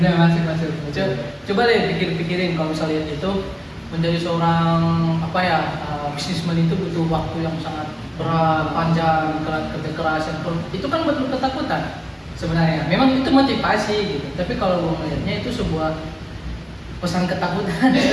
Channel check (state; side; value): identical; both; correlation 1.00